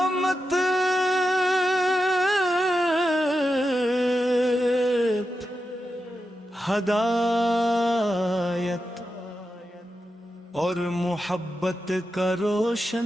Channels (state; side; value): normal; both; correlation 0.89